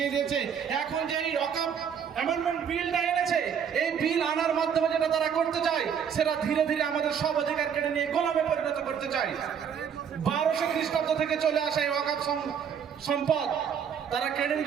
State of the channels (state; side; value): quieter; left; 7.7 dB